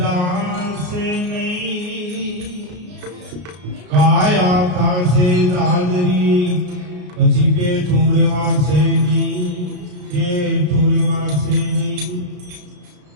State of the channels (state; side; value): late; left; 33 ms